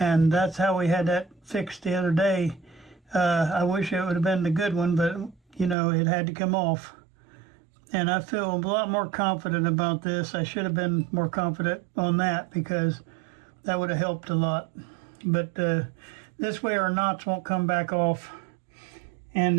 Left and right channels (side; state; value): left; drops out; at 5.8 s